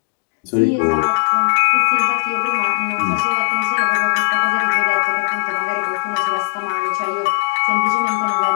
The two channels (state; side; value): silent; right; digital silence